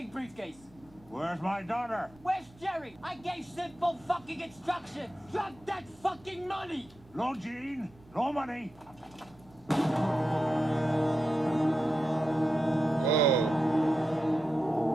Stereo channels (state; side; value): normal; both; correlation 0.90